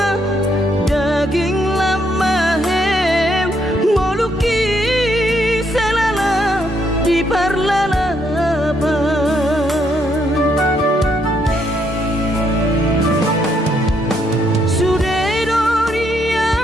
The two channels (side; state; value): both; normal; correlation 0.74